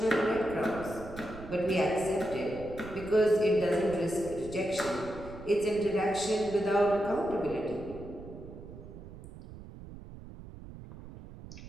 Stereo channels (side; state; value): right; noise; rumble, 14 dB below the sound